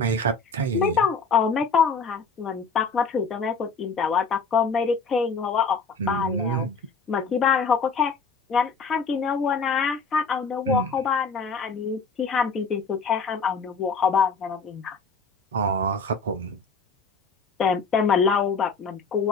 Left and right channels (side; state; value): right; quieter; 4.5 dB